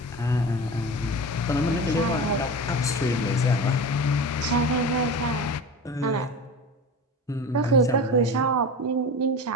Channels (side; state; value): both; normal; correlation 0.29